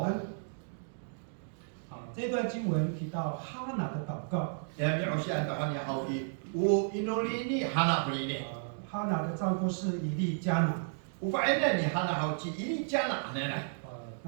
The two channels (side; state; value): left; silent; digital silence